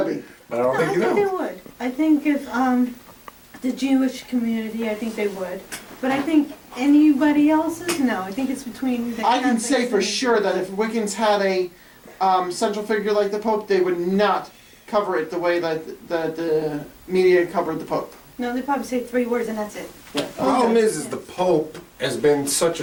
But I don't think you know. I think they would. I think if the Jewish community, I think they would. But I think anybody else's, no. I think it's between the I can say Catholics for and- sure that if Wiccans had a central figure like the Pope, they would not cover it the way that the media covered the Pope. No, they probably say 3 words and that's it. Yeah. The problem is the Pope has been such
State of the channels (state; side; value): identical; both; correlation 1.00